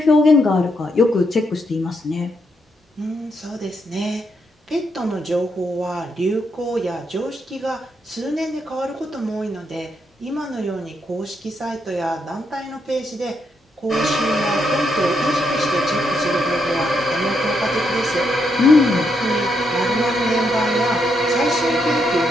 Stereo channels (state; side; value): normal; both; correlation 0.78